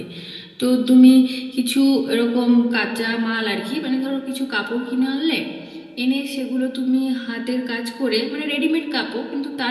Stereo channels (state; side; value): identical; both; correlation 1.00